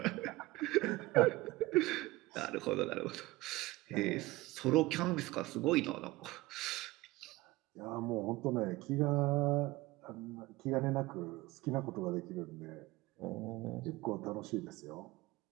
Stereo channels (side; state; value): left; quieter; 20.1 dB